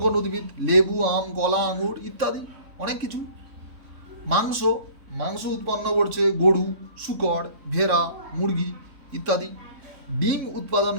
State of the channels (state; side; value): late; left; 3.6 ms